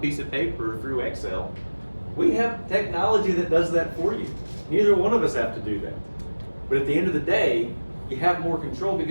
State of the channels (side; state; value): both; inverted; correlation -1.00